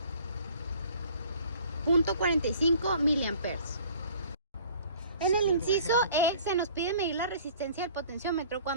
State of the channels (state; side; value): inverted; both; correlation -0.51